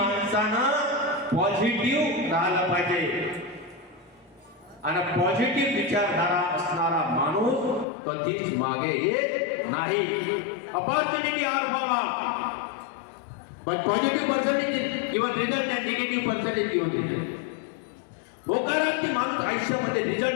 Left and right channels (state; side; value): drops out; right; at 7.9 s